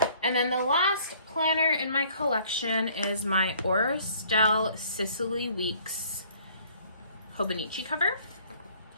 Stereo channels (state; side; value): inverted; both; correlation -0.58